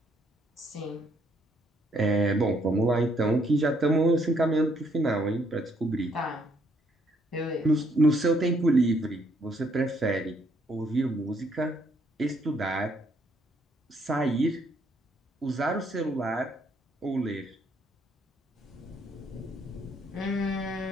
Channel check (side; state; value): both; normal; correlation 0.69